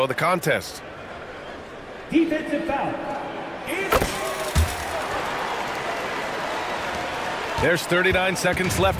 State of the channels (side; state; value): both; identical; correlation 1.00